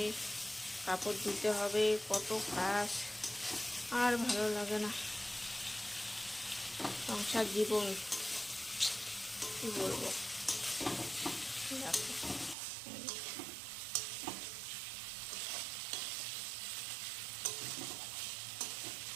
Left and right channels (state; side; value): drops out; left; at 12.6 s